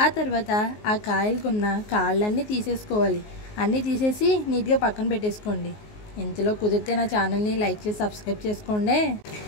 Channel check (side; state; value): right; late; 19 ms